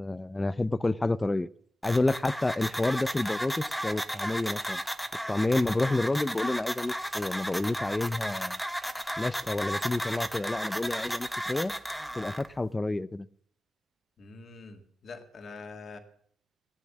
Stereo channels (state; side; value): normal; both; correlation 0.98